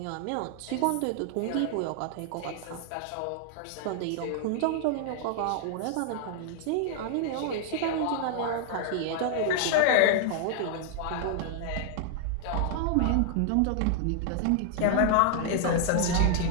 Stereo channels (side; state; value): both; different; correlation 0.00